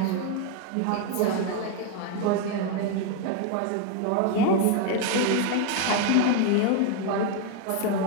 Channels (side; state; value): both; different; correlation 0.01